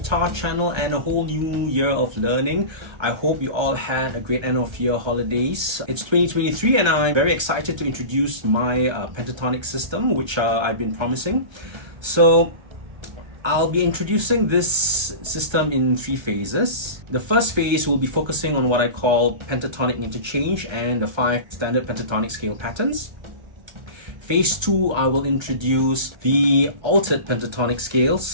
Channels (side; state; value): left; late; 1.3 ms